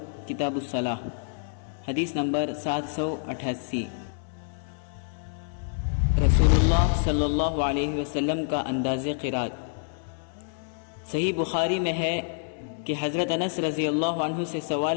کتاب الصلاح، حدیث نمبر 788. رسول اللہ صلی اللہ علیہ وسلم کا انداز قرات. صحیح بخاری میں ہے کہ حضرت انس رضی اللہ عنہ سے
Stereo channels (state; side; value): silent; right; 60 dB below the other